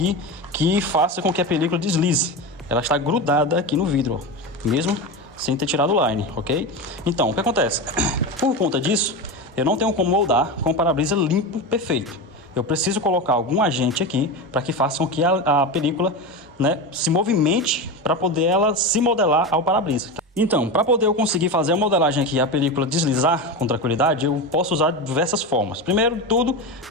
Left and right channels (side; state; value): both; normal; correlation 0.21